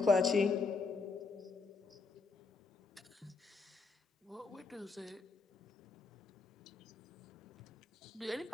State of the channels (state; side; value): quieter; right; 4.2 dB